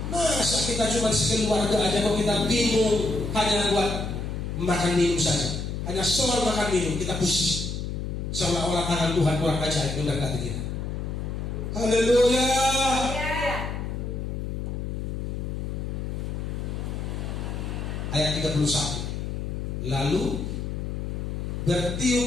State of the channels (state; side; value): noise; left; hum, 4 dB below the sound